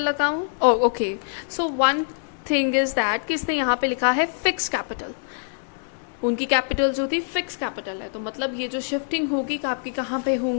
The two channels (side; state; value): right; silent; digital silence